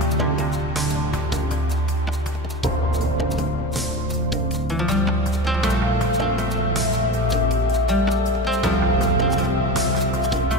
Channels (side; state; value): both; normal; correlation 0.29